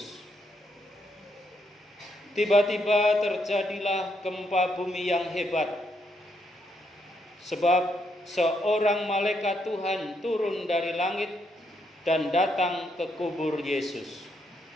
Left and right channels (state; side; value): normal; both; correlation 0.77